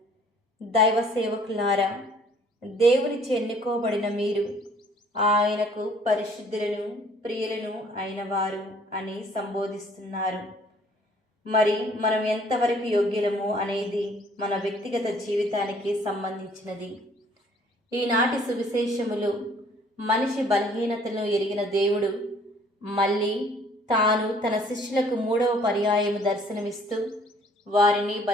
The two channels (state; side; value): normal; both; correlation 0.58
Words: దైవ సేవకులారా, దేవునిచే ఎన్నుకోబడిన మీరు ఆయనకు పరిశుద్ధులను, ప్రియులను అయినవారు అని సంబోధిస్తున్నారు. మరి మనం ఎంతవరకు యోగ్యులము అనేది మన వ్యక్తిగత జీవితానికి సంబంధించినది. ఈనాటి సువిశేషములు మనిషి బలహీనతను ఎరిగిన దేవుడు మళ్ళీ తాను తన శిష్యులకు 3వ పర్యాయము దర్శనమిస్తూ వారిని